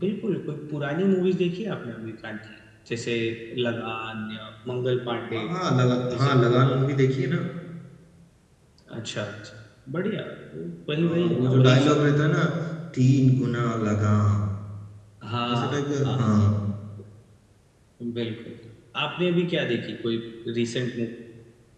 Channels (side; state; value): both; identical; correlation 1.00